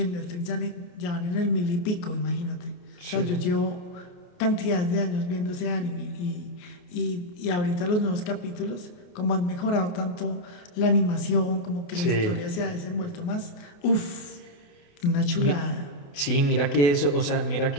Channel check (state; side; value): late; right; 28 ms